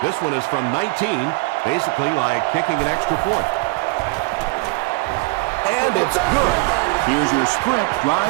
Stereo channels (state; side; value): quieter; left; 26.1 dB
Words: This one is from 19, basically like kicking an extra point. And it's good. Here's your sprint